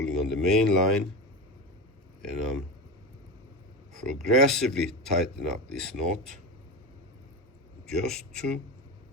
on the main line, and I'm progressively tighten up this knot just to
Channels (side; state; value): both; normal; correlation 0.22